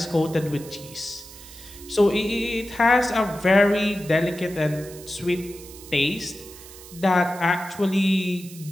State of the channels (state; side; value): noise; right; hiss, 17 dB below the sound